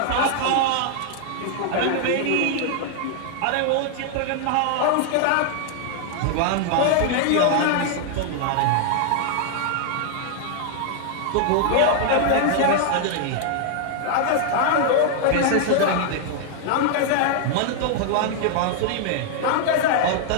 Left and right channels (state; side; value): different; both; correlation 0.00